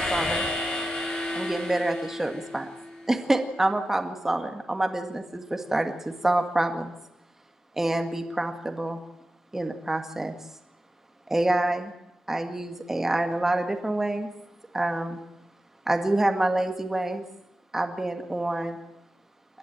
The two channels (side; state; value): both; normal; correlation 0.94